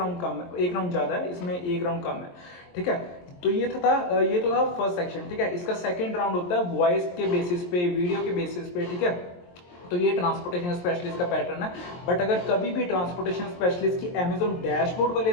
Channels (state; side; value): late; right; 23 ms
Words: कम है, 1 राउंड ज्यादा है, इसमें 1 राउंड कम है, ठीक है। तो ये तो था फर्स्ट सेक्शन, ठीक है। इसका सेकंड राउंड होता है वॉइस के बेसिस पे, वीडियो के बेसिस पे, ठीक है। तो ये ट्रांसपोर्टेशन स्पेशलिस्ट का पैटर्न है। बट अगर कभी भी ट्रांसपोर्टेशन स्पेशलिस्ट की अमेजोन डैशबोर्ड वाले